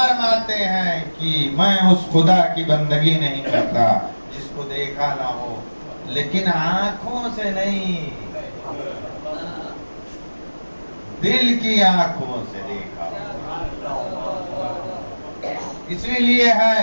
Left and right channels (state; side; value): inverted; both; correlation -1.00